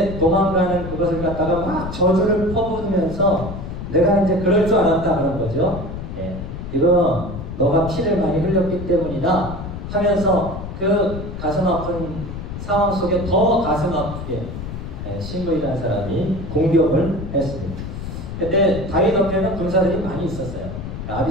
도망가는 그것을 갖다가 막 저주를 퍼부으면서 내가 이제 그럴 줄 알았다 그런 거죠. 이거 너가 피를 많이 흘렸기 때문이다 하면서 그 가슴 아픈 상황 속에 더 가슴 아프게 시므이라는 사람이 공격을 했습니다. 그때 다윗 옆에는 군사들이 많이 있었어요.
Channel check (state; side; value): noise; left; rumble, 8 dB below the sound